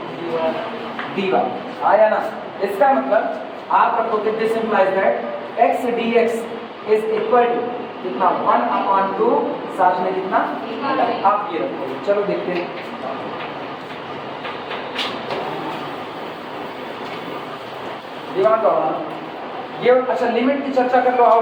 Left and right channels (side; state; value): both; identical; correlation 1.00